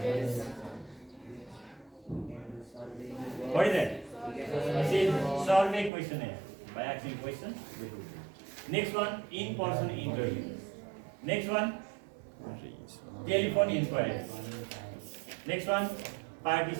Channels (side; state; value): left; drops out; at 5.9 s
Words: What is that? This is survey questionnaire. By asking questions, we do. Next one, in-person interview. Next one, telephone inquiry. Next one,